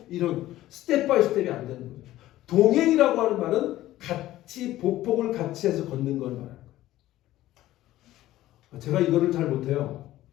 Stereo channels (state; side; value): quieter; right; 15.0 dB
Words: 이런 스텝 바이 스텝이 안 되는 거예요. 동행이라고 하는 말은 같이 보폭을 같이 해서 걷는 걸 말하는 거예요. 제가 이거를 잘 못해요.